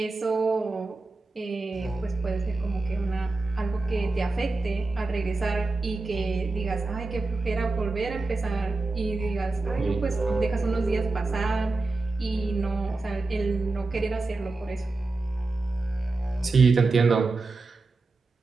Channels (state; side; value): quieter; left; 3.5 dB